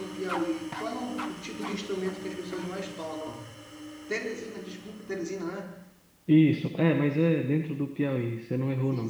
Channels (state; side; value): identical; both; correlation 1.00